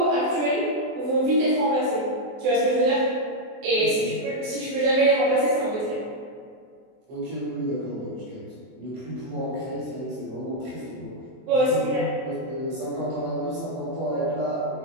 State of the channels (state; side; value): late; left; 24 ms